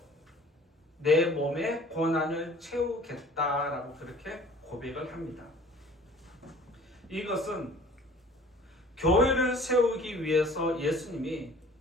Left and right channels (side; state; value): both; normal; correlation 0.49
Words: 내 몸의 고난을 채우겠다라고 그렇게 고백을 합니다. 이것은 교회를 세우기 위해서 예수님이